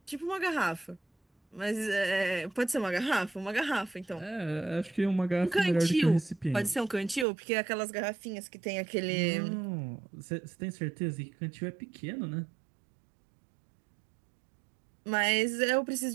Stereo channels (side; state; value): left; drops out; at 7.2 s